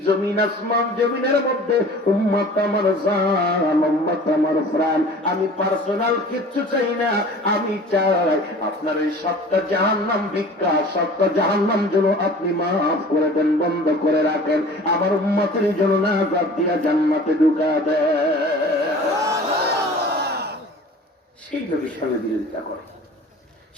জমিন আসমান জমিনের মধ্যে উম্মত আমার জান, উম্মত আমার প্রাণ, আমি পার্সোনাল কিচ্ছু চাই না, আমি চাই আপনার এই সবটা জাহান্নাম ভিক্ষা, সবটা জাহান্নাম যেন আপনি মাফ করে দেন, বন্ধ করে রাখেন, আমার উম্মতের জন্য নাজাত দিয়া জান্নাতে ঢুকা দেন। সেই নবীর সঙ্গে বিরোধিতা করে,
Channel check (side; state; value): both; normal; correlation 0.43